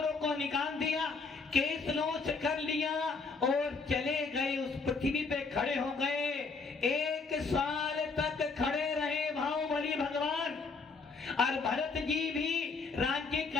को निकाल दिया, केस नोच कर लिया और चले गए, उस पृथ्वी पे खड़े हो गए। 1 साल तक खड़े रहे बाहुबली भगवान और भरत जी भी राज्य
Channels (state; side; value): quieter; right; 4.4 dB